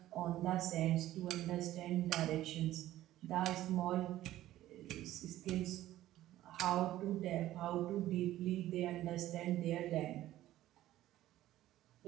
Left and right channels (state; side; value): quieter; left; 14.4 dB